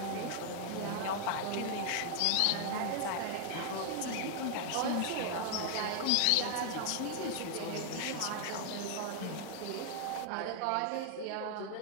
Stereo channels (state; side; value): different; both; correlation 0.00